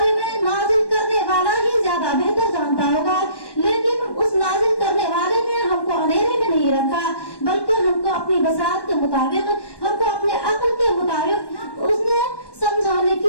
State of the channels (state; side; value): late; right; 1.1 ms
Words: میں نازل کرنے والا ہی زیادہ بہتر جانتا ہوگا, لیکن اس نازل کرنے والے نے ہم کو اندھیرے میں نہیں رکھا, بلکہ ہم کو اپنی بساط کے مطابق, ہم کو اپنے عقل کے مطابق اس نے